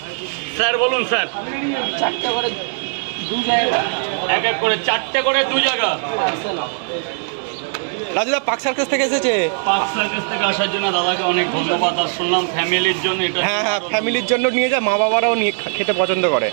স্যার বলুন স্যার। 4টে করে 2 জায়গা, এক এক করে 4টে করে 2 জায়গা। রাজুদা পাক সার্কাস থেকে এসেছে। পাক সার্কাস থেকে আসার জন্য দাদাকে অনেক ধন্যবাদ। আর শুনলাম ফ্যামিলির জন্য এটা। হ্যাঁ, ফ্যামিলির জন্য নিয়ে যায়, মা বাবারাও নিয়ে খেতে পছন্দ করে।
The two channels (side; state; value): left; silent; 66 dB below the other